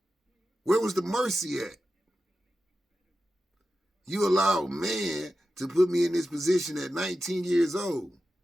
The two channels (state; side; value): normal; both; correlation 0.92